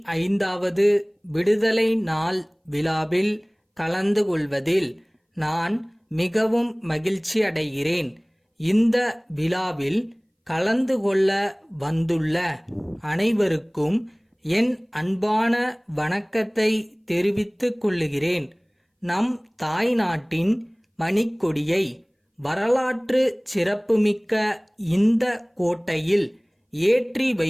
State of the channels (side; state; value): both; identical; correlation 1.00